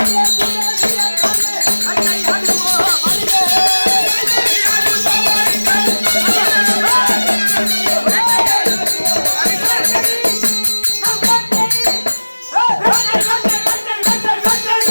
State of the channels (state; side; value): inverted; both; correlation -1.00